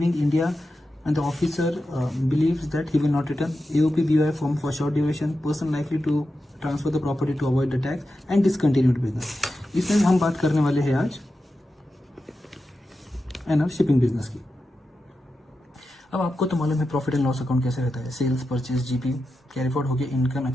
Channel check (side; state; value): both; normal; correlation 0.90